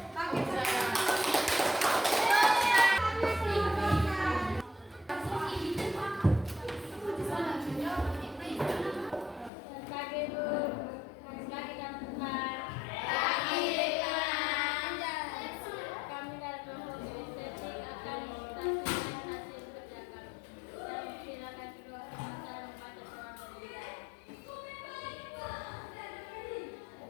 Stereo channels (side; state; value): right; drops out; at 9.5 s